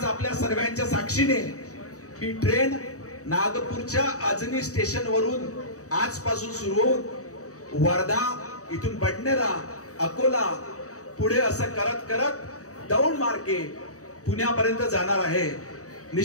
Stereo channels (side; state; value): right; late; 0.66 ms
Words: आपल्या सर्वांच्या साक्षीने ही ट्रेन नागपूरच्या अजनी स्टेशन वरून आजपासून सुरू होऊन वर्धा, इथून बडनेरा, अकोला, पुढे असं करत करत दौंड मार्गे पुण्यापर्यंत जाणार आहे।